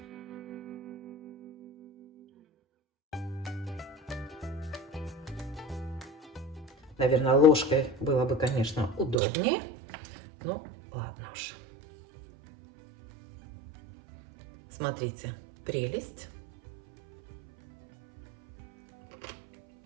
Наверное, ложкой было бы, конечно, удобнее. Ну, ладно уж. Смотрите, прелесть.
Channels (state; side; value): drops out; left; at 9.2 s